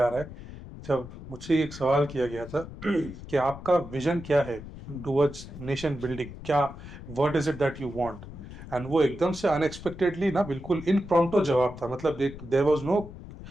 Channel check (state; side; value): noise; left; rumble, 14 dB below the sound